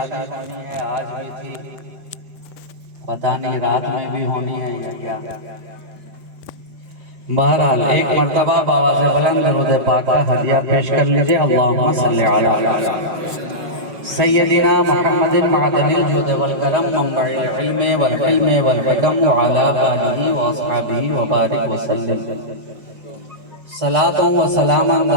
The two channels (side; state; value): left; late; 5.2 ms